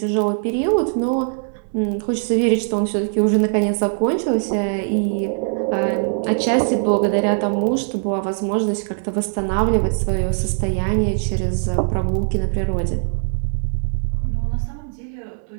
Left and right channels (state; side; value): silent; left; digital silence